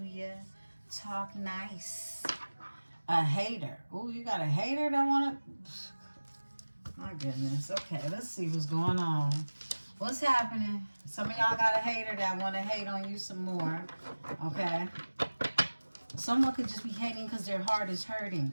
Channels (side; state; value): both; inverted; correlation -1.00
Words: Talk nice. A hater. Oh, you got a hater that want to... My goodness. Okay, let's see what's going on. What's happening? Some of y'all got a hater that want to hate on you some more. Okay? Someone could just be hating because their heart is hurting.